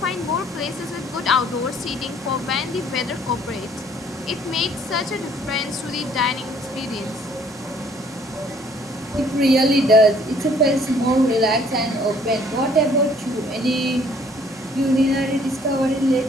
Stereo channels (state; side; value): normal; both; correlation 0.60